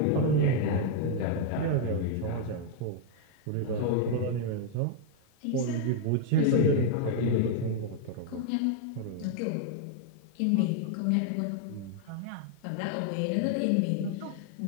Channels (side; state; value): both; different; correlation 0.00